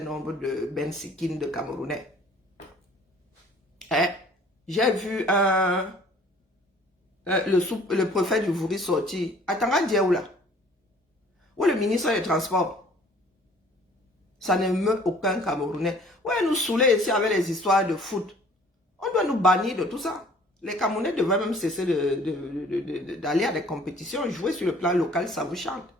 de Bensikines de Camerounais. Hein? J'ai vu le préfet du Vouri sortir. Attends, Dieu là. Où le ministre des Transports? Ça ne meut aucun Camerounais. Ouais, nous saouler ici avec les histoires de foot. On doit nous bannir de tout ça. Les Camerounais devraient même cesser d'aller à des compétitions, jouer sur le plan local, ça vous chante.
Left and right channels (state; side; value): normal; both; correlation 0.54